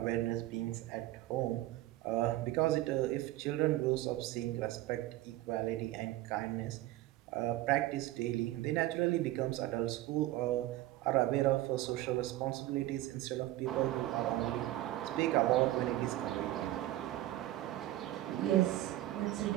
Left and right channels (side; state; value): left; quieter; 15.7 dB